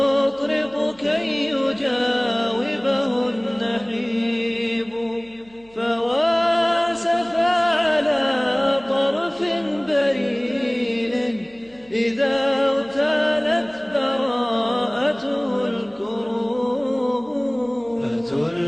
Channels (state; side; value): noise; right; hum, 29 dB below the sound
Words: كي يجاوبه النحيب، فواسف على طرف بريل إذا اغتالت براءته الكروب.